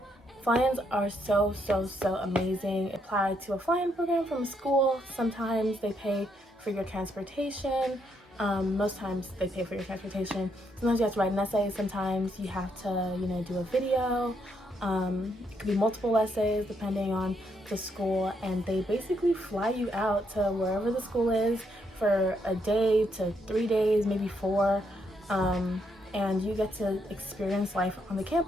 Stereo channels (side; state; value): both; normal; correlation 0.76